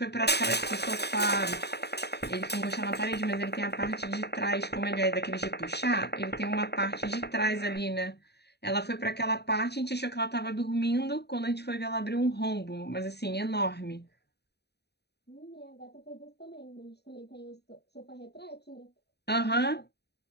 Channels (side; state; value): right; late; 0.48 ms